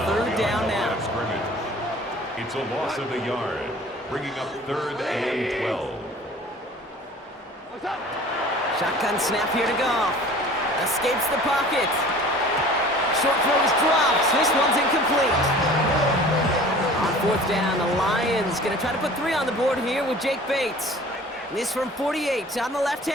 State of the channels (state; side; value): normal; both; correlation 0.45